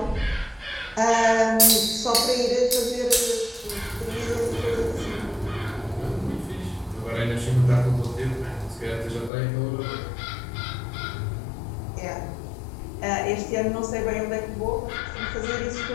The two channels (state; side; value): drops out; right; at 9.3 s